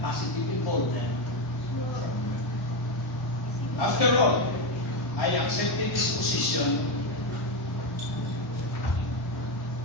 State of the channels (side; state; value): both; normal; correlation 0.10